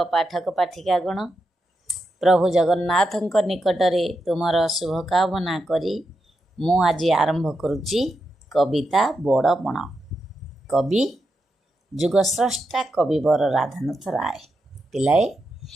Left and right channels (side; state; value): both; normal; correlation 0.86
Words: पाठक पाठिकागण। प्रभु जगन्नाथ निकटरे तुमर शुभकामना करी मु आज आरंभ करुच्ची कविता बड़पण। कवि जुगस्रष्टा कविवर राधानाथ राय। पिलाए